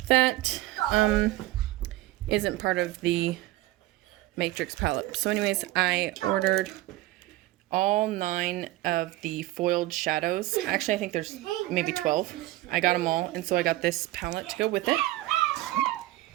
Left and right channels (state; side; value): quieter; left; 17.2 dB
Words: that isn't part of the Matrix palette. So anyways, I ordered all 9 of the foiled shadows. Actually, I think there's maybe 12. I got them all, and so I got this palette to go with it.